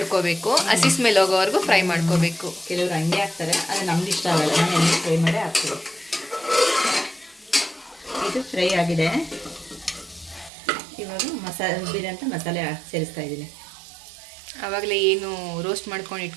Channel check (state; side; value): drops out; left; at 10.5 s